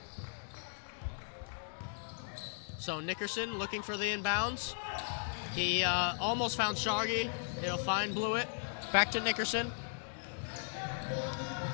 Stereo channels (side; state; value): right; silent; digital silence